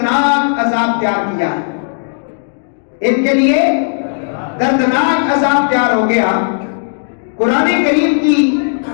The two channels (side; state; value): right; silent; digital silence